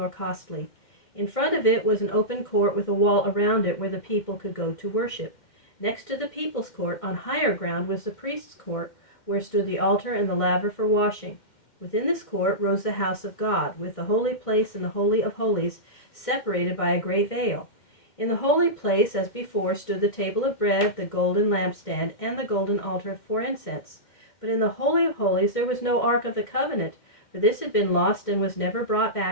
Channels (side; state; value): right; late; 2.1 ms